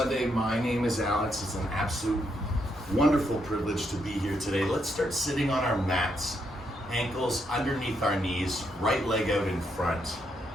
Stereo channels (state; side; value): normal; both; correlation 0.78